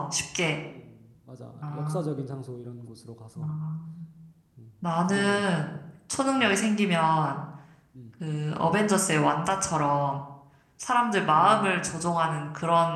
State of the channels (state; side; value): identical; both; correlation 1.00